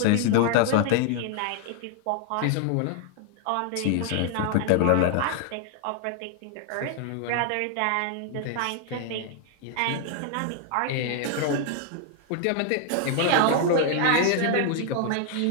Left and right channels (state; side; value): different; both; correlation 0.00